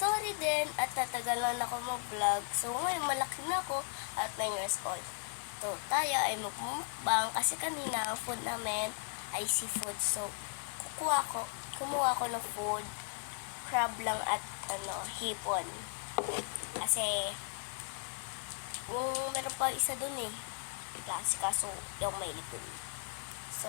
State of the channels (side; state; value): right; silent; digital silence